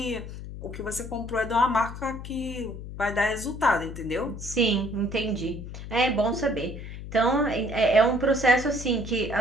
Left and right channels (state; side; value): noise; left; hum, 10 dB below the sound